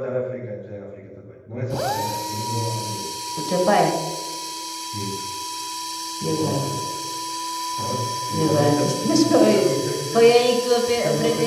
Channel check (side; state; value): both; identical; correlation 1.00